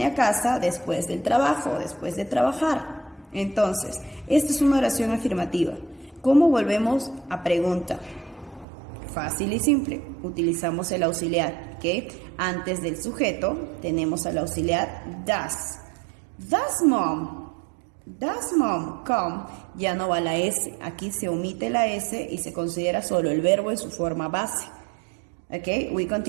a casa después del trabajo, después de trabajar. Entonces, esta es una oración afirmativa. ¿Cómo volvemos a pregunta? Fácil y simple, utilizamos el auxiliar, ¿ok? Antes del sujeto tenemos al auxiliar does. Does mom come? Ya no va la S, aquí se omite la S y se considera solo el verbo en su forma base. ¿Ok?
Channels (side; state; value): left; drops out; at 8.7 s